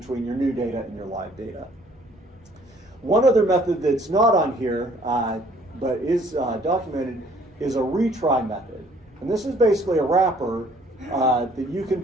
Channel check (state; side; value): normal; both; correlation 0.59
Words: your new data and your live data. One other method that's not on here, but is documented, is a retry method. And this is basically a wrapper that you can